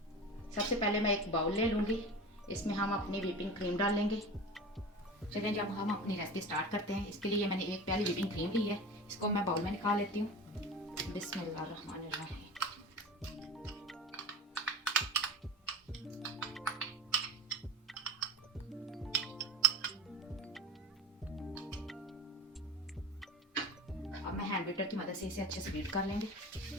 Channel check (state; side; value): normal; both; correlation 0.33